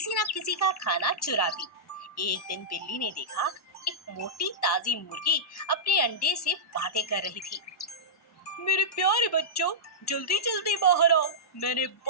न किसी का खाना चुराती। एक दिन बिल्ली ने देखा एक मोटी ताजी मुर्गी अपने अंडे से बातें कर रही थी। मेरे प्यारे बच्चों, जल्दी जल्दी बाहर आओ। मैंने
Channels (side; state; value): both; normal; correlation -0.14